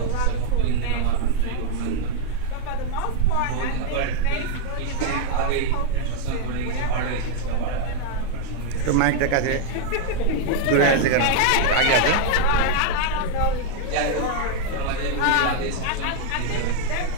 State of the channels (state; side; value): different; both; correlation 0.00